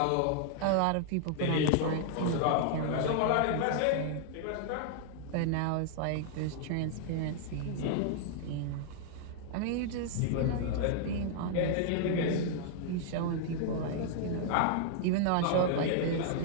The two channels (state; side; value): different; both; correlation -0.01